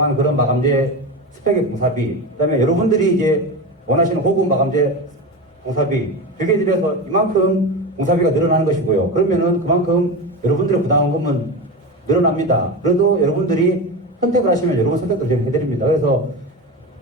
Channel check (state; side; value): normal; both; correlation 0.22